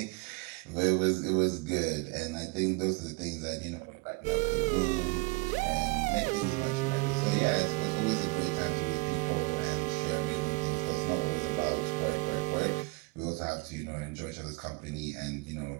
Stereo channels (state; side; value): quieter; left; 26.0 dB